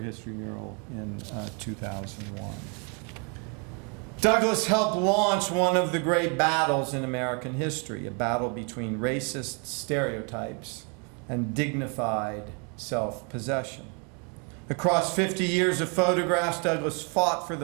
history mural in 2001. Douglass helped launch one of the great battles in American history, a battle between racist stereotypes and dignified self-possession. Across 50 years of photographs, Douglass fought for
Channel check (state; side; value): quieter; left; 36.0 dB